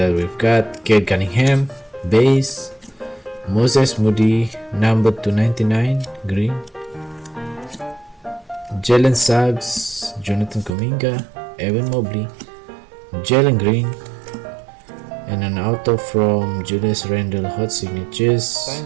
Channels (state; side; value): drops out; left; at 10.7 s